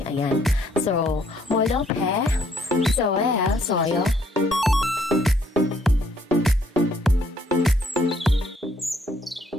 Ayan. So, molophe, soyo.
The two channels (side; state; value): both; normal; correlation 0.67